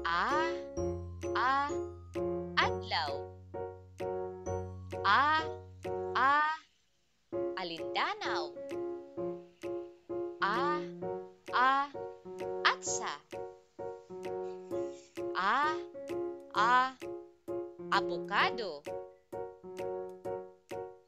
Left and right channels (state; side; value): identical; both; correlation 1.00